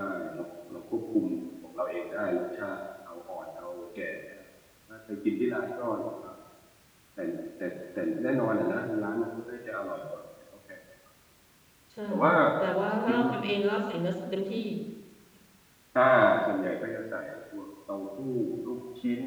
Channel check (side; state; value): both; identical; correlation 1.00